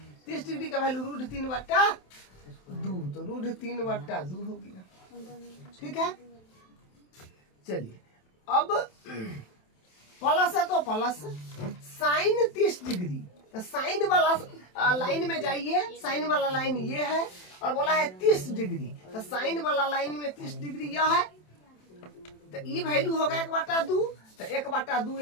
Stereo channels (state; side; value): late; right; 27 ms